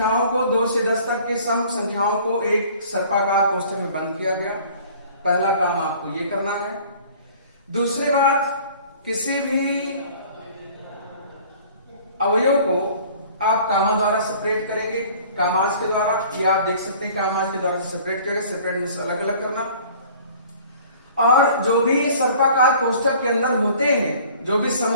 को 2 से 10 तक के सम संख्याओं को एक सर्पाकार कोष्ठक में बंद किया गया। पहला काम आपको ये करना है। दूसरी बात, किसी भी अवयव को आप कामा द्वारा सेपरेट करेंगे, कामाज के द्वारा, ये आप देख सकते हैं कामाज के द्वारा सेपरेट करेंगे, सेपरेट मींस अलग अलग करना। और जो भी सर्पाकार कोष्ठक के अंदर होते हैं, जो भी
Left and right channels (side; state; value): both; inverted; correlation -0.50